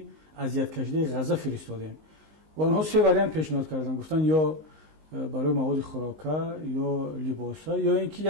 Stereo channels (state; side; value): late; left; 19 ms